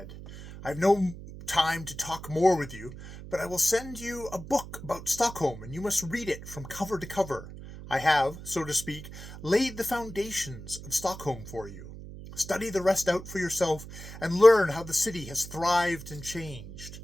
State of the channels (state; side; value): noise; right; hum, 13 dB below the sound